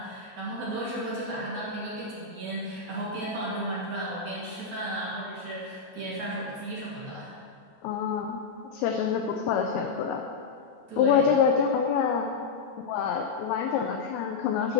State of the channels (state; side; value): quieter; right; 4.9 dB